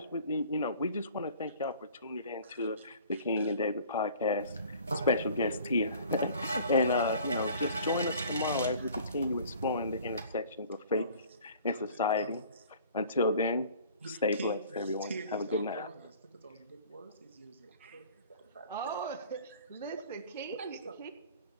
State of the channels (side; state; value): both; inverted; correlation -0.49